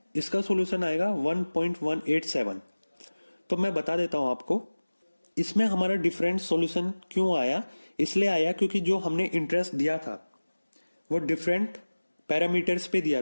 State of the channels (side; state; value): both; inverted; correlation -1.00